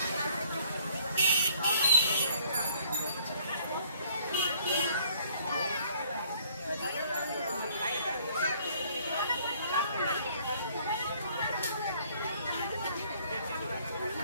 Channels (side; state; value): both; inverted; correlation -0.60